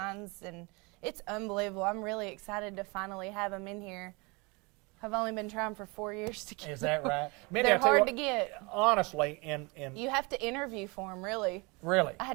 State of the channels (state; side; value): quieter; left; 27.8 dB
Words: and it's unbelievable. I'm really excited to finally have them in here. I've only been trying for 4 years to get Is that them. right? Mindy, They're I tell you hard what, to get. Honestly, and You have to interview for them, really. really. I